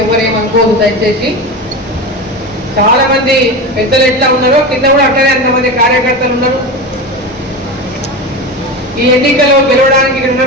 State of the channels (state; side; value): normal; both; correlation 0.24